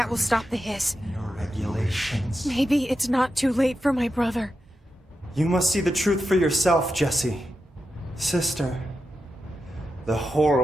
will stop the hiss. Your regulations. Maybe it's not too late for my brother. You must see the truth for yourself, Jesse. Sister. The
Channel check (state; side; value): normal; both; correlation 0.89